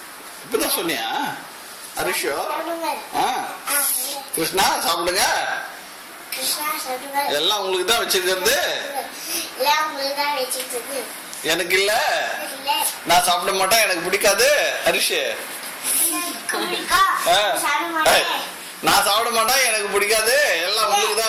இப்பதான் சொன்னியா? அரிஷோ கிருஷ்ணா சாப்பிடுங்க. எல்லாம் உங்களுக்கு தான் வச்சிருக்கிறது. எனக்கு இல்ல, நான் சாப்பிட மாட்டேன், எனக்கு பிடிக்காது. அரிஷ் நான் சாப்பிட மாட்டேன், எனக்கு பிடிக்காது, எல்லாம் உங்களுக்கு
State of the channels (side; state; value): both; identical; correlation 1.00